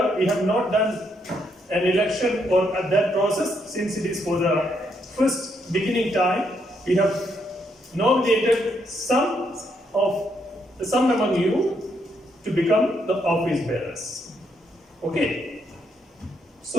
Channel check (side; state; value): both; normal; correlation 0.76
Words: we have not done an election or that process since it is for the first beginning time. We have nominated some among you to become the office bearers. Okay.